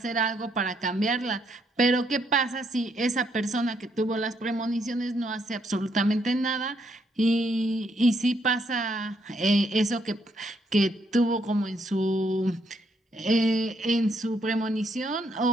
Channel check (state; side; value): normal; both; correlation 0.74